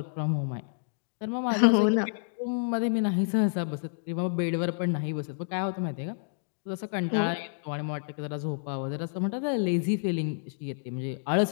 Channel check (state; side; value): silent; right; digital silence